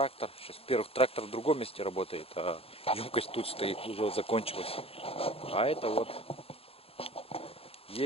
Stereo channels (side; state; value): right; late; 0.28 ms